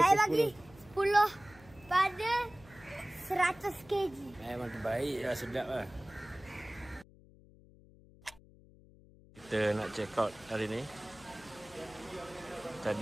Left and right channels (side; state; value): left; noise; hum, 24 dB below the sound